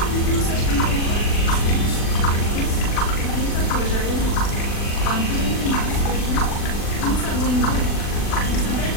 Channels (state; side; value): late; right; 40 ms